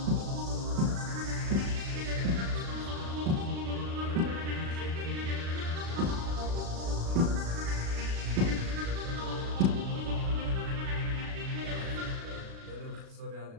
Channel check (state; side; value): late; left; 36 ms